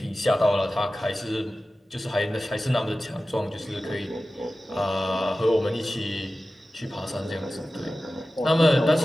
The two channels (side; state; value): both; normal; correlation 0.95